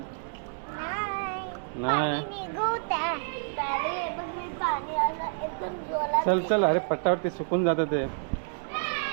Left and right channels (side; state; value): left; silent; 59 dB below the other